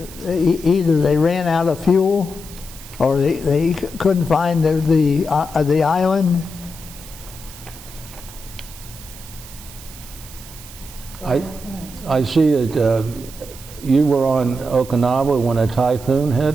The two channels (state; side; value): noise; right; hiss, 17 dB below the sound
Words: they ran out of fuel, or they couldn't find the island. I see that you were on Okinawa when a typhoon